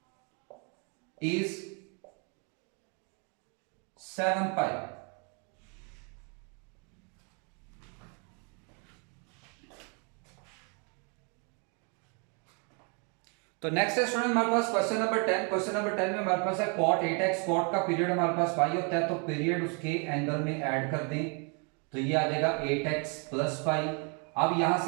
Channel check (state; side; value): quieter; left; 36.4 dB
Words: is 7 pi। तो नेक्स्ट है स्टूडेंट हमारे पास क्वेश्चन नंबर 10। क्वेश्चन नंबर 10 में हमारे पास है cot 8x। cot का पीरियड हमारे पास पाई होता है, तो पीरियड उसके एंगल में ऐड कर दें, तो ये आ जाएगा 8x प्लस पाई। अब यहां